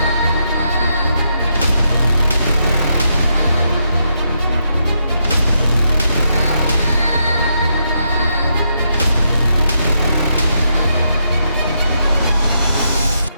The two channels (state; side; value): inverted; both; correlation -0.80